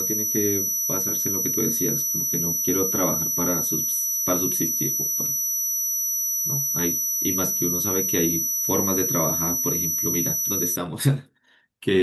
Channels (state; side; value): identical; both; correlation 1.00